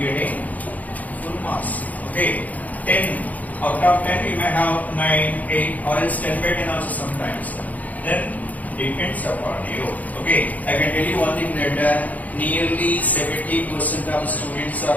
full marks. Okay. 10 out of 10 you may have 9, 8 or else 10 by 10 also sometimes. Then depends upon you. Okay. I can tell you one thing that nearly 70% of students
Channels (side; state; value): right; late; 0.077 ms